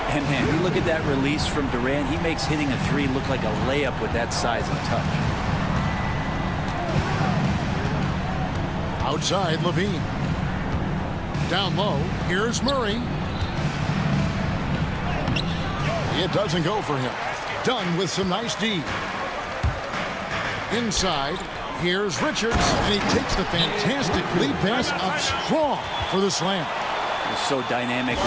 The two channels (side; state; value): both; identical; correlation 1.00